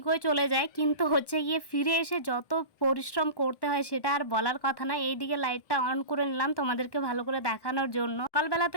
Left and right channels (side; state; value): right; late; 1.1 ms